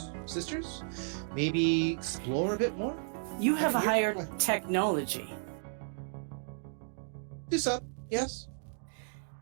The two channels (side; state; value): left; silent; digital silence